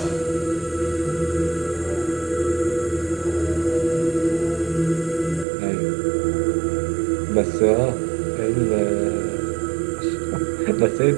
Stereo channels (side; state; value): left; drops out; at 5.5 s